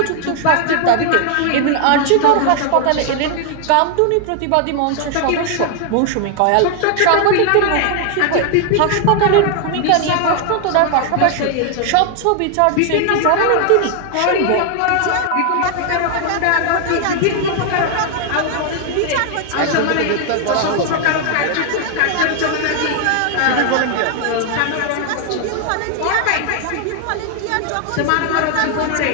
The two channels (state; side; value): different; both; correlation 0.00